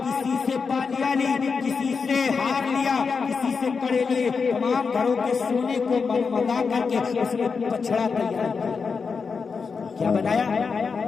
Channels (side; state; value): right; quieter; 5.2 dB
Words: کسی سے پالیا لی، کسی سے ہار لیا، کسی سے کڑے لیے، تمام گھروں کے سونے کو منگا کر کے اس نے بچڑا تیار کیا بنایا۔